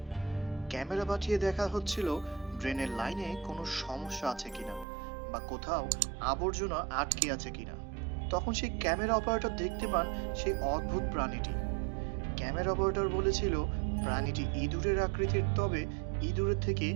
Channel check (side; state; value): left; drops out; at 4.9 s